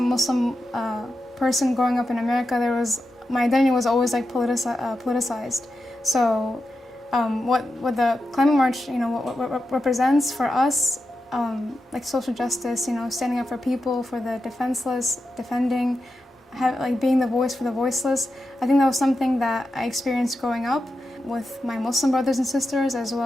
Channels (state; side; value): normal; both; correlation 0.89